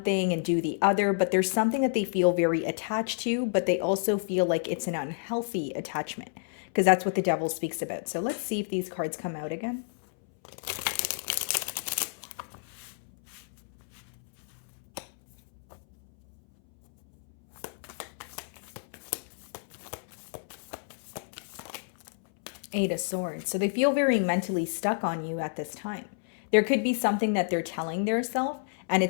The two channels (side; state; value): right; silent; 58 dB below the other